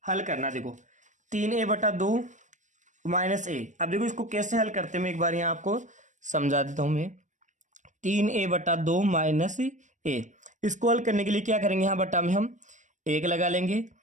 हल करना। देखो 3a/2 माइनस ए। अब देखो इसको कैसे हल करते हैं मैं एक बार यहाँ आपको समझा देता हूँ मैं। 3a/2 माइनस ए, इसको हल करने के लिए क्या करेंगे? यहाँ बटा में हम 1 लगा लेंगे।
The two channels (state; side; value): late; left; 0.35 ms